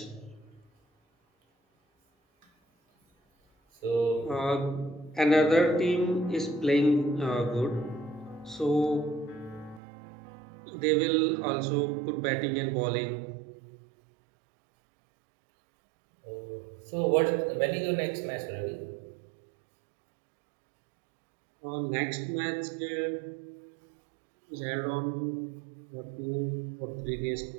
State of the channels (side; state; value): left; drops out; at 9.8 s